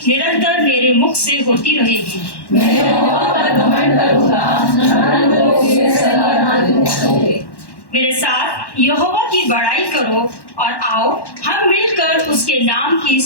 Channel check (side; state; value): right; late; 1.1 ms